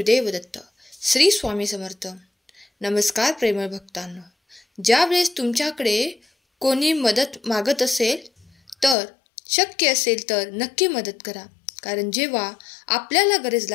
दत्त. श्री स्वामी समर्थ. नमस्कार प्रेमळ भक्तांनो. ज्यावेळेस तुमच्याकडे कोणी मदत मागत असेल तर शक्य असेल तर नक्की मदत करा. कारण जेव्हा आपल्याला गरज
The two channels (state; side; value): drops out; right; at 9.0 s